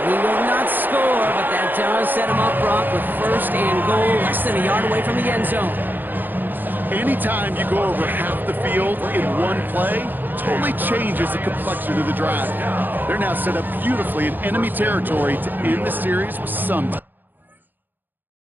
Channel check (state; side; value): late; left; 0.090 ms